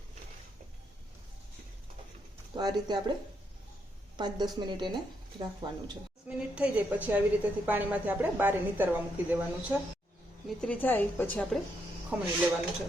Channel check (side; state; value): both; normal; correlation 0.77